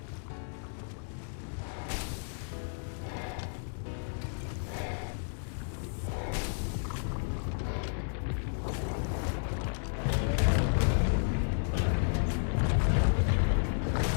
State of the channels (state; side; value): silent; right; digital silence